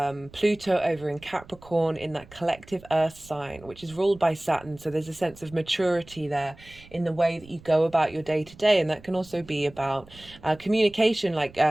Pluto over in Capricorn in that collective earth sign, which is ruled by Saturn. So there's a sense of maturity there in the way that you go about your day to day. And that can also be about communication. Like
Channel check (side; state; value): right; noise; rumble, 22 dB below the sound